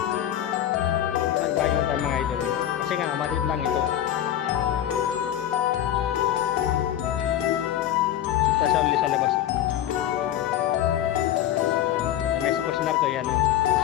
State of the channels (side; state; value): right; quieter; 11.5 dB